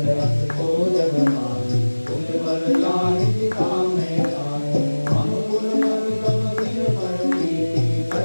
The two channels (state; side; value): inverted; both; correlation -1.00